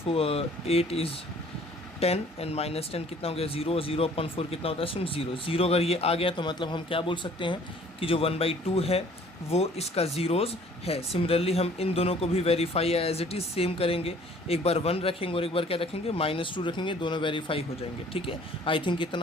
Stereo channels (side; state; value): both; normal; correlation 0.54